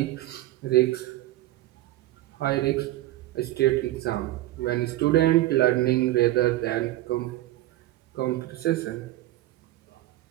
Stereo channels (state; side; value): quieter; left; 16.1 dB